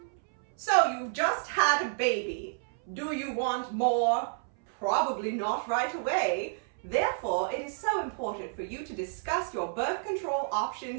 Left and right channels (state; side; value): silent; left; 58 dB below the other